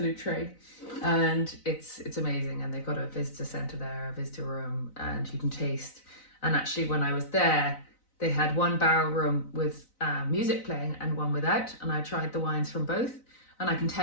and it's amazing. And they've got a visitor centre there, a visitor room, and you can taste. And actually, when I was there, they had one barrel room with music playing and one without, and I tried the wines from both. And I can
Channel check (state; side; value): late; right; 4.0 ms